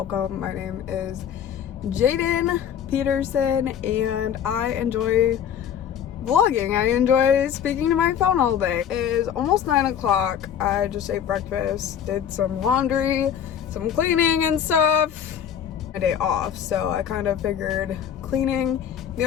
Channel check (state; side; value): quieter; right; 8.9 dB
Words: My name is Jaden Peterson and I enjoy vlogging. I enjoy speaking to my phone all day. It is almost 9 o'clock. I just ate breakfast, did some laundry, some cleaning and stuff. My day off, so I kind of figured cleaning,